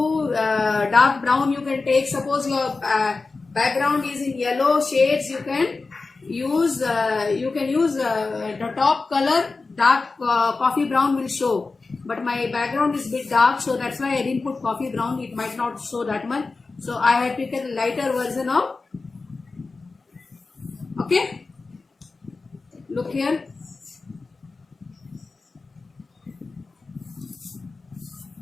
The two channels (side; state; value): right; quieter; 3.9 dB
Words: dark brown you can take. Suppose your background is in yellow shades, you can use the top color. Dark coffee brown will show, but my background is a bit dark, so that's why I didn't put coffee brown. It might not show that much, so I had taken a lighter version of. Okay, look here.